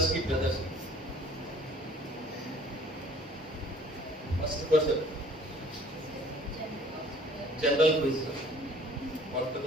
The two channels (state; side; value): normal; both; correlation 0.53